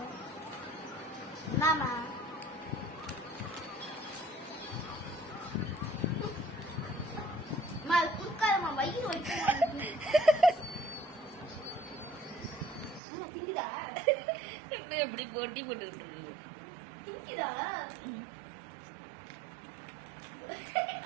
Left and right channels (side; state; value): left; drops out; at 13.0 s